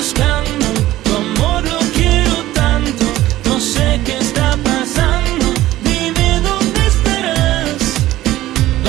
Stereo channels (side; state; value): left; quieter; 15.4 dB